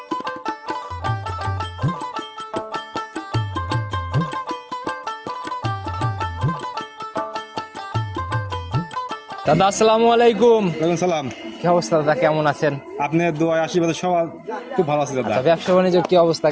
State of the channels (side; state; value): both; identical; correlation 1.00